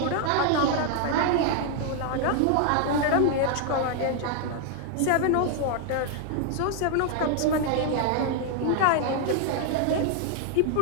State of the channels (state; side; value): different; both; correlation 0.00